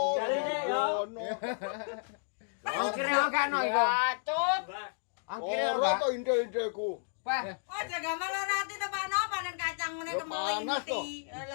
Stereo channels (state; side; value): silent; right; digital silence